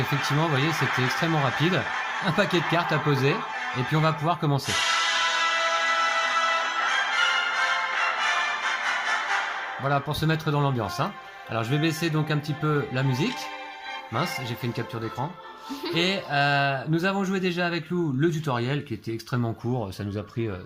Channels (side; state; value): both; identical; correlation 1.00